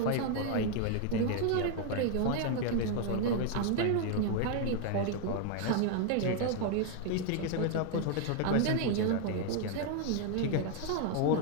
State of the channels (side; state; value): both; different; correlation 0.01